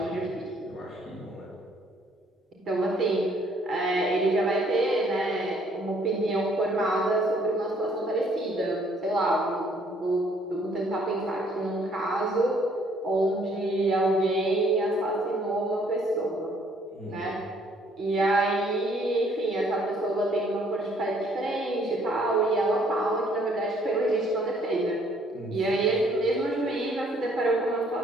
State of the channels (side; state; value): both; normal; correlation 0.63